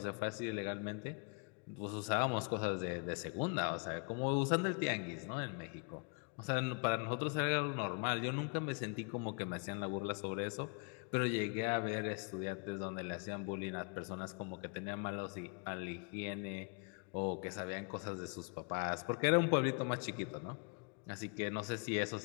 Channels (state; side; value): quieter; right; 37.4 dB